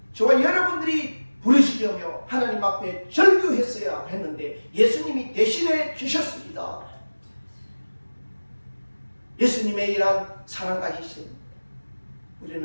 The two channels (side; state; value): both; inverted; correlation -1.00